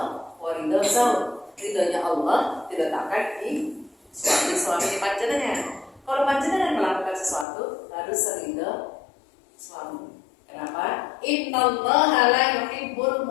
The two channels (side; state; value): right; drops out; at 7.5 s